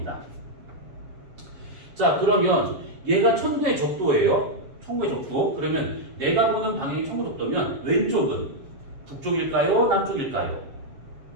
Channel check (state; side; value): late; left; 7.3 ms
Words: 자, 그러면 얘가 천구의 적도예요. 천구의 적도. 그러면 내가 보는 방향이 천구 적도면 왼쪽은 북쪽일까요? 남쪽일까요?